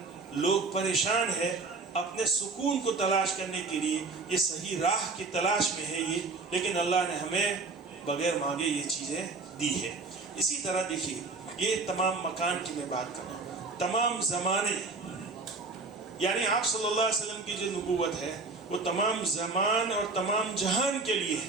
لوگ پریشان ہے اپنے سکون کو تلاش کرنے کے لیے, یہ صحیح راہ کی تلاش میں ہے یہ, لیکن اللہ نے ہمیں بغیر مانگے یہ چیزیں دی ہے. اسی طرح دیکھیے یہ تمام مکان کی میں بات کر رہا ہوں, تمام زمانے, یعنی آپ صلی اللہ علیہ وسلم کی جو نبوت ہے وہ تمام زمان اور تمام جہان کے لیے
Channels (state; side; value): quieter; left; 3.9 dB